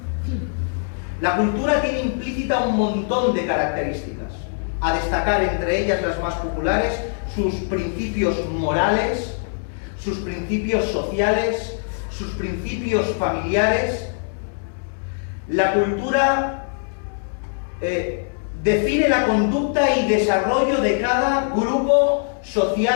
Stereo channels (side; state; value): right; silent; digital silence